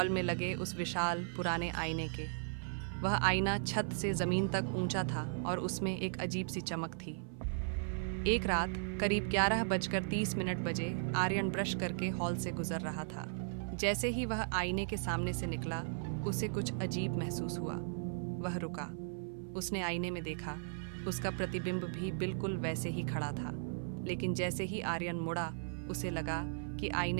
में लगे उस विशाल पुराने आईने के। वह आईना छत से जमीन तक ऊंचा था और उसमें एक अजीब सी चमक थी। एक रात करीब 11:30 बजे आर्यन ब्रश करके हॉल से गुजर रहा था। जैसे ही वह आईने के सामने से निकला, उसे कुछ अजीब महसूस हुआ। वह रुका। उसने आईने में देखा, उसका प्रतिबिंब भी बिल्कुल वैसे ही खड़ा था। लेकिन जैसे ही आर्यन मुड़ा, उसे लगा कि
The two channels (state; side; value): silent; left; 53 dB below the other